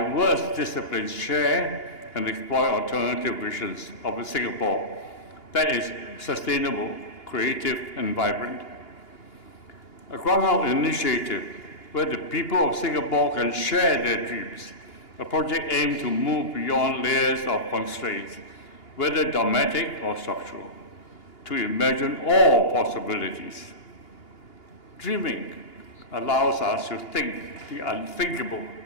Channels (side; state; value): right; late; 2.8 ms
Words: disciplines share and explore alternative visions of a Singapore that is sustainable, creative, and vibrant. A ground-out initiative where the people of Singapore can share their dreams, a project aimed to move beyond layers of constraints, whether dogmatic or structural, to imagine all possibilities. Dreaming allows us to think the unthinkable